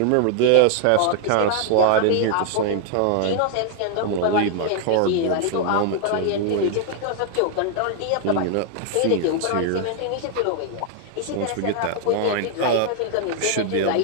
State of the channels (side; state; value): both; different; correlation 0.00